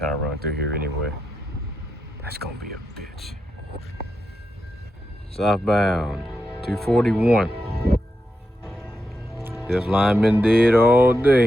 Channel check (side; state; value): both; normal; correlation 0.86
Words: run through here anyway. That's gonna be a bitch. Southbound 241. This line been dead all